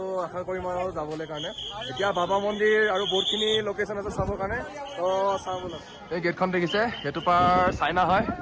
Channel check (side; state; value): both; identical; correlation 1.00